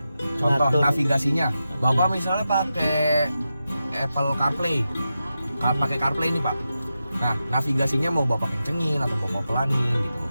Contoh ngatur. navigasinya. Bapak misalnya pakai Apple CarPlay. Pakai CarPlay nih Pak. Nah, navigasinya mau Bapak kencengin atau Bapak pelanin gitu.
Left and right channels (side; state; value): both; inverted; correlation -0.90